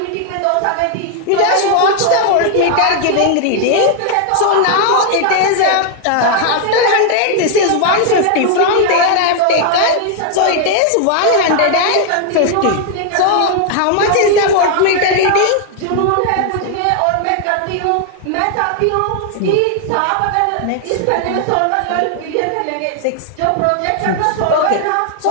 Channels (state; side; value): different; both; correlation 0.00